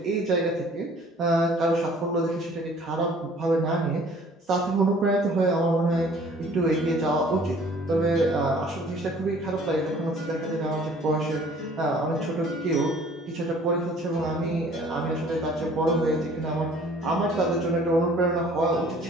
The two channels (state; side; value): normal; both; correlation 0.53